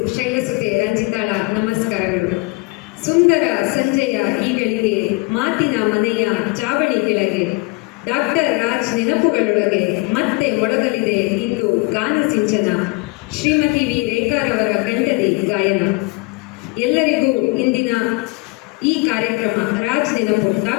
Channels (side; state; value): right; quieter; 25.7 dB